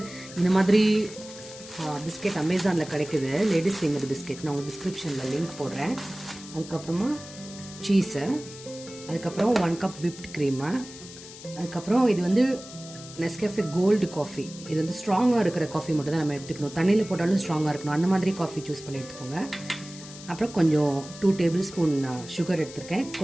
இந்த மாதிரி பிஸ்கெட் அமேசானில் கிடைக்குது. Ladies finger biscuit. நான் உங்களுக்கு டிஸ்கிரிப்ஷனில் லிங்க் போடுறேன். அதுக்கப்புறமா சீஸு, அதுக்கப்புறம் 1 கப் விப்ட் க்ரீமு, அதுக்கப்புறம் இது வந்து நெஸ்கேஃபே கோல்டு காஃபி. இது வந்து ஸ்ட்ராங்காக இருக்கிற காஃபி மட்டும் தான் நம்ம எடுத்துக்கணும். தண்ணியில் போட்டாலும் ஸ்ட்ராங்காக இருக்கணும். அந்த மாதிரி காஃபி சூஸ் பண்ணி எடுத்துக்கோங்க. அப்புறம் கொஞ்சம் 2 டேபிள் ஸ்பூன் சுகர் எடுத்துருக்கேன்.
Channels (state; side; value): noise; left; hiss, 16 dB below the sound